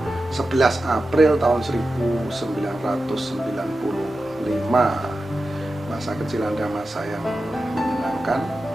11 April tahun 1995. Masa kecil Anda masa yang menyenangkan,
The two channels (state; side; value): normal; both; correlation 0.92